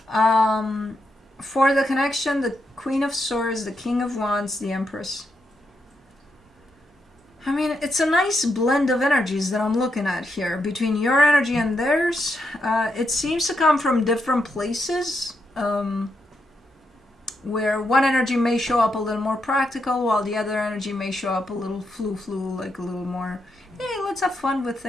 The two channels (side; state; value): both; normal; correlation 0.82